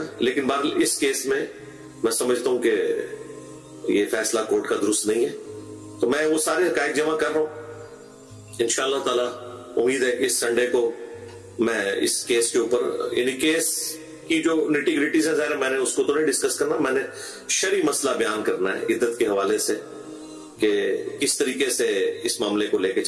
लेकिन बहरहाल इस केस में मैं समझता हूं कि ये फैसला कोर्ट का दुरुस्त नहीं है। तो मैं वो सारे हकायक जमा कर रहा हूं। इंशाअल्लाह ताला उम्मीद है कि इस संडे को मैं इस केस के ऊपर, यानी केस की जो निटी ग्रिटीज है, ज़ाहिर मैंने उसको तो नहीं डिस्कस करना, मैंने शरी मसला बयान करना है इद्दत के हवाले से कि किस तरीके से इस मामले को लेके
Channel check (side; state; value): both; identical; correlation 1.00